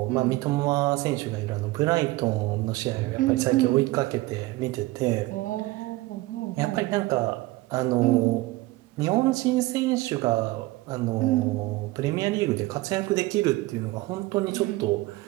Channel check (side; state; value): left; quieter; 19.8 dB